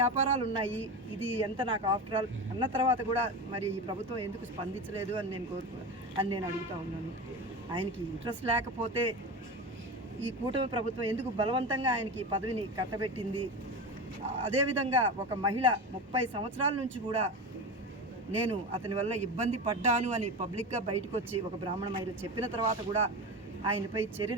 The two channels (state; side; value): normal; both; correlation 0.24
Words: ఉన్నాయి, ఇది ఎంత నాకు ఆఫ్టర్ ఆల్ అన్న తర్వాత కూడా మరి ఈ ప్రభుత్వం ఎందుకు స్పందించలేదు అని నేను అడుగుతూ ఉన్నాను. ఆయనకి ఇంట్రెస్ట్ లేకపోతే ఈ కూటమి ప్రభుత్వం ఎందుకు బలవంతంగా ఆయనకి పదవిని కట్టబెట్టింది? అదేవిధంగా ఒక మహిళ 30 సంవత్సరాల నుంచి కూడా నేను అతని వల్ల ఇబ్బంది పడ్డాను అని పబ్లిక్గా బయటకు వచ్చి ఒక బ్రాహ్మణ మహిళ చెప్పిన తర్వాత కూడా ఆయనపై